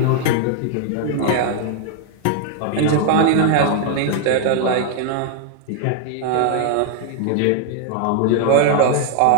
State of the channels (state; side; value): different; both; correlation 0.00